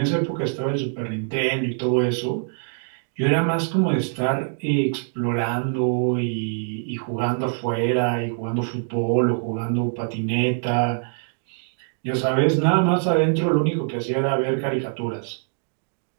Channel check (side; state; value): left; silent; digital silence